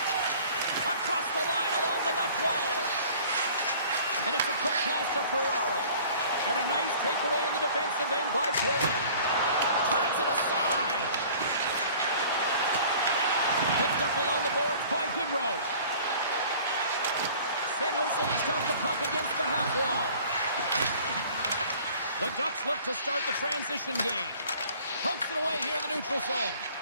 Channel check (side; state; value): both; inverted; correlation -0.49